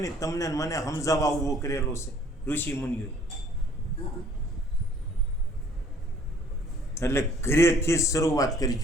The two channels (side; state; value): both; normal; correlation 0.58